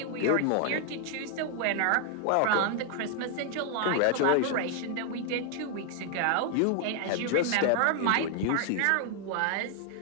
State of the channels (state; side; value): different; both; correlation 0.00